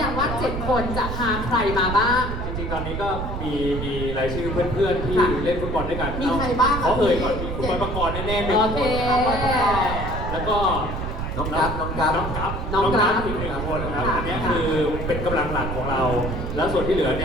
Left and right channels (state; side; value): noise; right; rumble, 4 dB below the sound